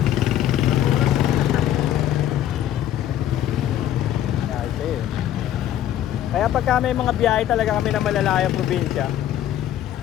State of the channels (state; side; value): quieter; right; 11.6 dB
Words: Kaya pagka may mga biyahe talaga kami na malalayang probinsya,